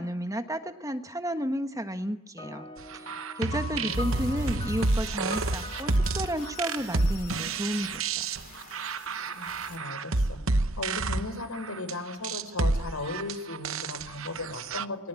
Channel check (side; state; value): both; normal; correlation 0.66